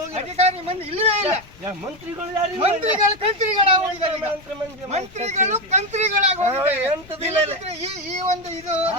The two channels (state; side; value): noise; left; rumble, 23 dB below the sound